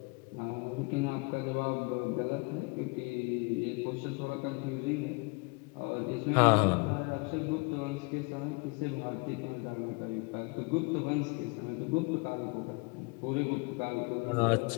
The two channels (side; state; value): right; quieter; 29.8 dB